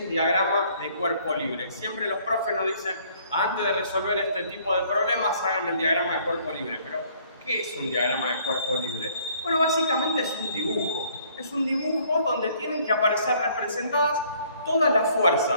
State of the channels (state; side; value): inverted; both; correlation -0.61